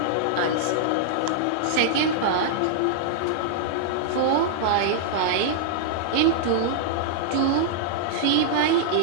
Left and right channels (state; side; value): different; both; correlation -0.01